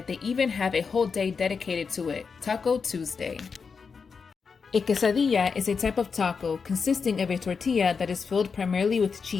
they even have a whole day dedicated to it, Taco Tuesday. A quesadilla is a type of taco consisting of a tortilla that is filled primarily with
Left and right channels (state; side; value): quieter; right; 5.5 dB